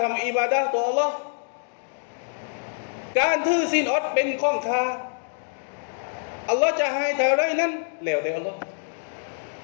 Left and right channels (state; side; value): silent; right; digital silence